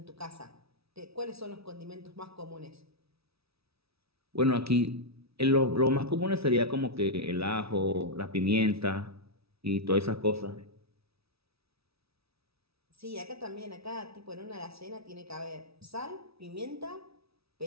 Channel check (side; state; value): left; late; 0.77 ms